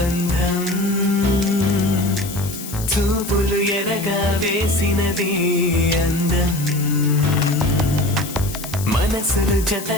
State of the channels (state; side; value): noise; left; hiss, 11 dB below the sound